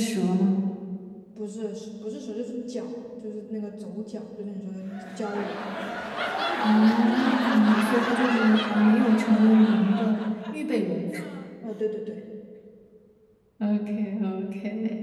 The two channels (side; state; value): both; identical; correlation 1.00